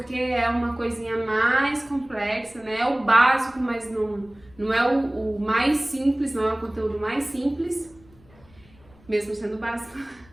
é uma coisinha mais complexa, né? É o básico, mas não é o mais simples, não é o conteúdo mais simples, mesmo sendo básico.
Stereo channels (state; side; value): noise; left; rumble, 27 dB below the sound